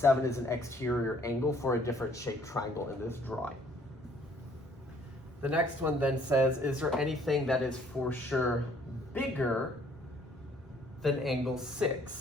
is an exterior angle for a different shaped triangle in this drawing. The next one then says, is there anything that is for sure bigger than angle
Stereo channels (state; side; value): normal; both; correlation 0.61